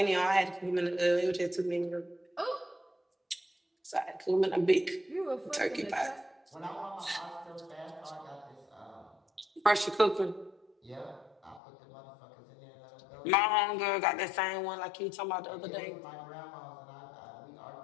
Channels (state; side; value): drops out; right; at 11.6 s